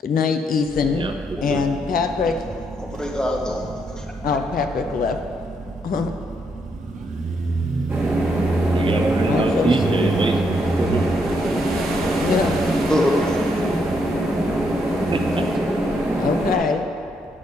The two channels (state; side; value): normal; both; correlation 0.76